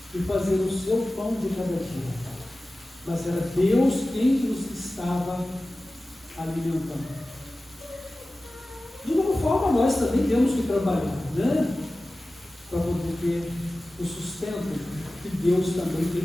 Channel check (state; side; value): normal; both; correlation 0.96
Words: e fazer o seu pão de cada dia. Mas era Deus quem os estava alimentando. De alguma forma, nós também temos que trabalhar, né? Para poder ter o sustento que Deus também